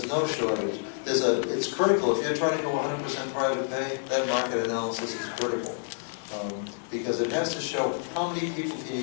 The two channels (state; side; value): silent; right; 59 dB below the other